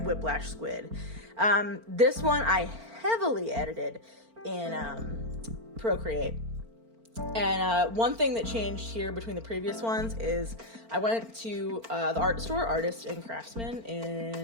Whiplash Squid. This one I heavily edited in Procreate. And one thing that changed here between the previous ones is I went to the art store, Artist and Craftsman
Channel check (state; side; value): late; left; 4.4 ms